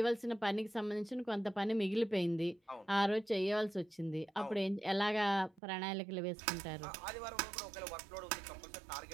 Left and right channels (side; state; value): left; drops out; at 5.6 s